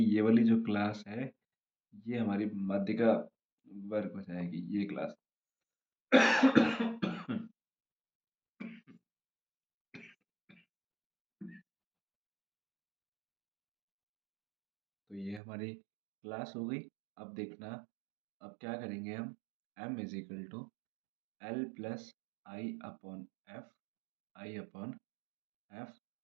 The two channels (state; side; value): drops out; left; at 15.4 s